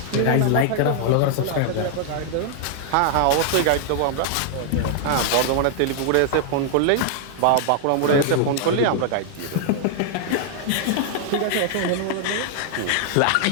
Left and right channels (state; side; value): different; both; correlation -0.01